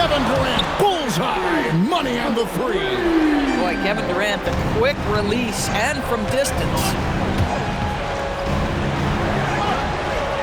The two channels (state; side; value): identical; both; correlation 1.00